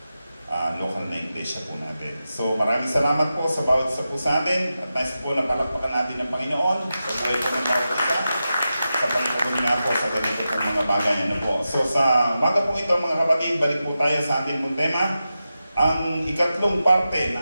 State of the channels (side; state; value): both; inverted; correlation -0.91